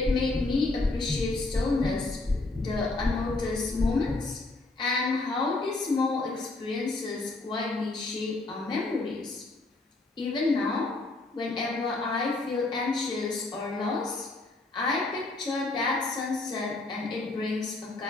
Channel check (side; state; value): right; quieter; 3.1 dB